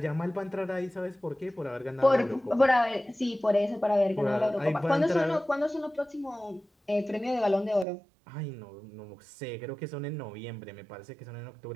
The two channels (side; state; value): left; drops out; at 7.9 s